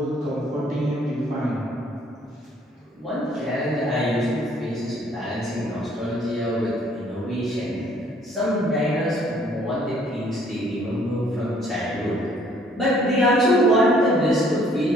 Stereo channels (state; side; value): normal; both; correlation 0.61